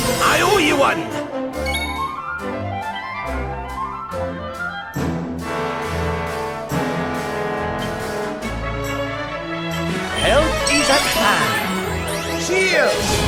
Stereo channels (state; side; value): identical; both; correlation 1.00